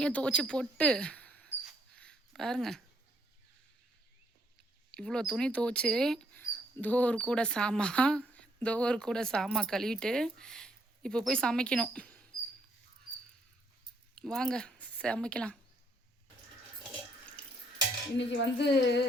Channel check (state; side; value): normal; both; correlation 0.69